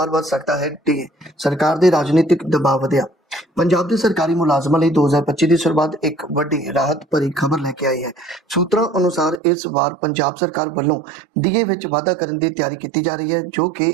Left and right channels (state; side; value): drops out; left; at 9.4 s